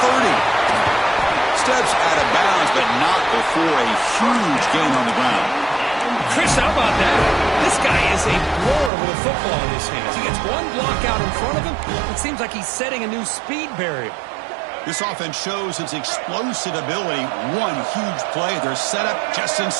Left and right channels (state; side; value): drops out; left; at 8.9 s